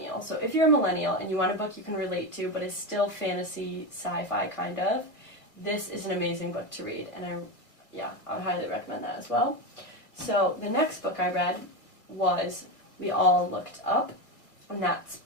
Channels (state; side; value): late; right; 2.2 ms